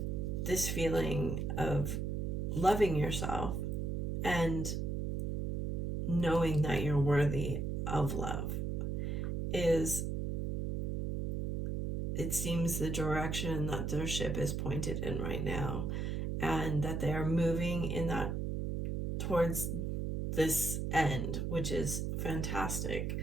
this feeling of loving yourself and knowing that you're worthy of love is, it seems, the direction that their ship is pointed in right now, and that they are moving in that towards this end, which is fantastic,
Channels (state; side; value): noise; right; hum, 1 dB below the sound